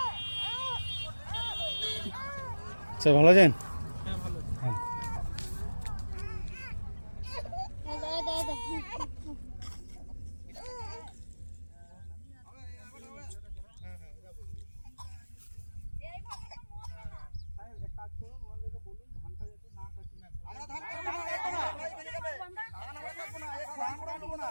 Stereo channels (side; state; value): both; inverted; correlation -1.00